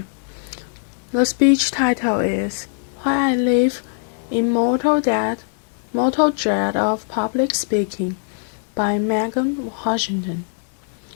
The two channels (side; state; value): right; silent; digital silence